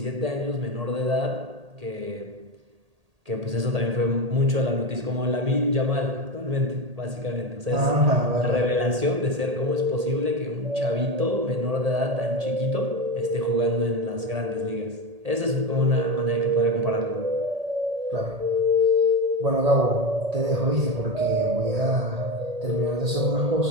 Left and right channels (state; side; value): late; left; 1.8 ms